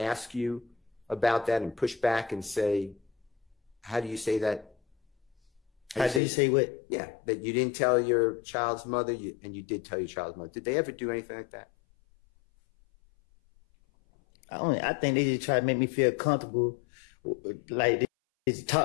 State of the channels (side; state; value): right; drops out; at 6.2 s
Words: you about that and push back and say, how do you say that? How do you say what? Yeah, that you didn't tell your child's mother, and you did tell your child's mother. Did they ever do anything like that? I think they just try to make me feel comfortable. Like they